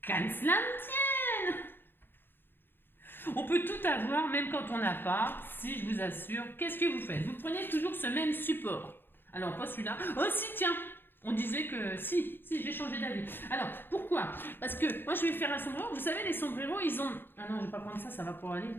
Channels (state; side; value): late; right; 0.10 ms